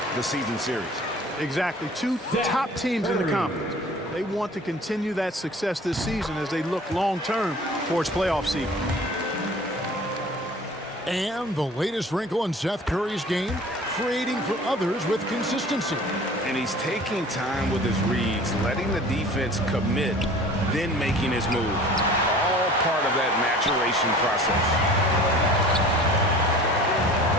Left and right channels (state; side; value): normal; both; correlation 0.45